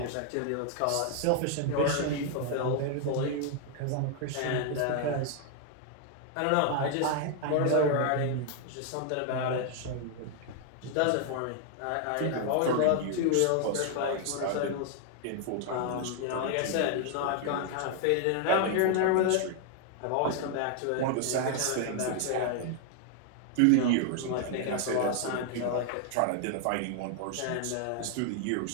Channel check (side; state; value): both; different; correlation 0.00